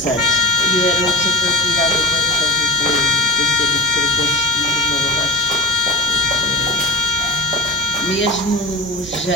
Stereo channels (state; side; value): normal; both; correlation 0.35